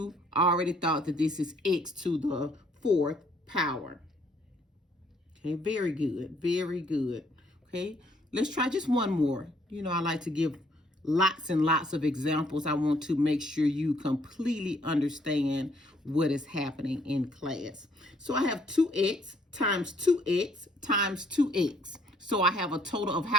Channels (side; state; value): both; normal; correlation 0.65